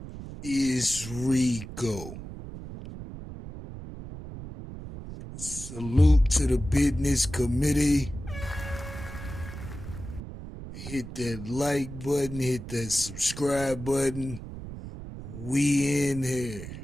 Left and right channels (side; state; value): right; noise; rumble, 11 dB below the sound